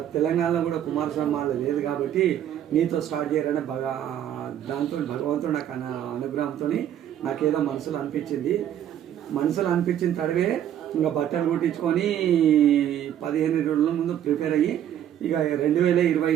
తెలంగాణలో కూడా కుమారస్వామి మాల లేదు కాబట్టి నీతో స్టార్ట్ చేయాలనే దాంతో భగవంతుడు నాకు అనుగ్రహంతో నాకేదో మనసులో అనిపించిన తడవే ఇంకా బట్టలు కుట్టించుకొని 15 రోజుల ముందు ప్రిపేర్ అయ్యి ఇక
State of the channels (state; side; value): quieter; left; 10.6 dB